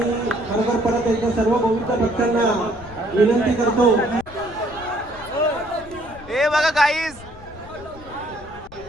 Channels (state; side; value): noise; left; rumble, 19 dB below the sound